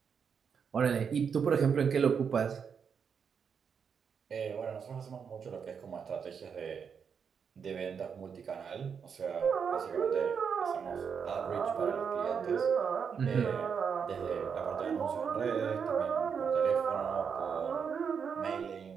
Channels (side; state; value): left; quieter; 6.6 dB